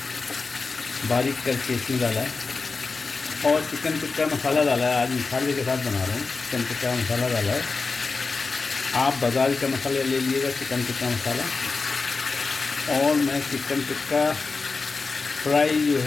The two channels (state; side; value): quieter; right; 4.2 dB